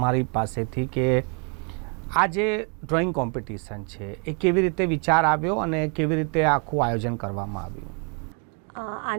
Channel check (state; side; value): quieter; left; 37.2 dB